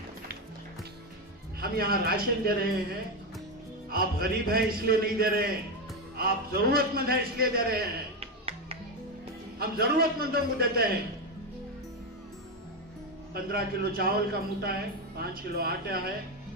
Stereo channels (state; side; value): normal; both; correlation 0.10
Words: हम यहाँ राशन दे रहे हैं, आप गरीब हैं इसलिए नहीं दे रहे हैं, आप जरूरतमंद हैं इसलिए दे रहे हैं। हम जरूरतमंदों को देते हैं। 15 किलो चावल का मूठा है, 5 किलो आटा है,